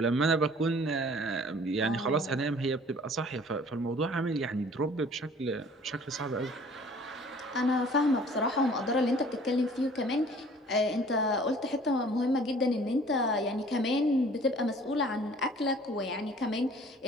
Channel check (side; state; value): both; normal; correlation 0.52